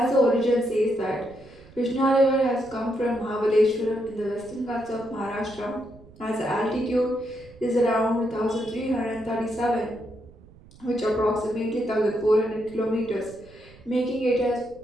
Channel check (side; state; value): right; noise; rumble, 23 dB below the sound